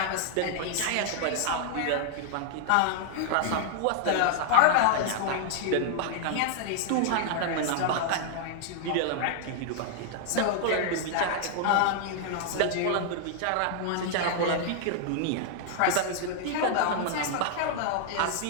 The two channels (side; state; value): both; different; correlation -0.01